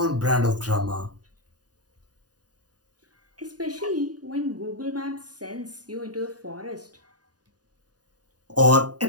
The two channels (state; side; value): late; left; 0.68 ms